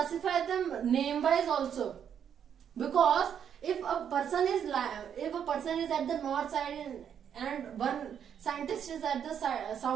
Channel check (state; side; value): quieter; left; 8.5 dB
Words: them name wise also, because if a person is at the north side and one scientist is at the